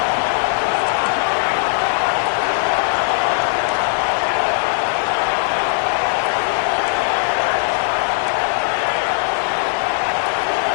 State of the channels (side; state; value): right; silent; digital silence